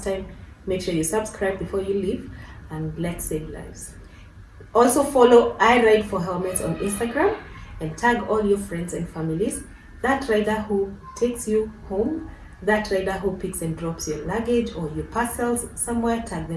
time, make sure you subscribe before you leave, and let's save lives. Also follow I Ride for Helmets on Instagram and tag all your friends and families. That rider who takes you home, that rider who picks and drops your luggage or your parcels somewhere, tag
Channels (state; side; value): identical; both; correlation 1.00